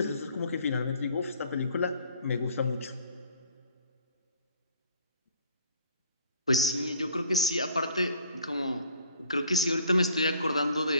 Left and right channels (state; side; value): inverted; both; correlation -0.55